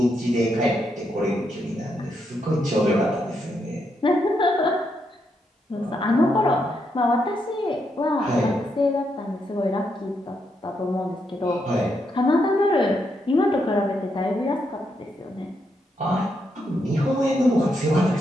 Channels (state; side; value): normal; both; correlation 0.80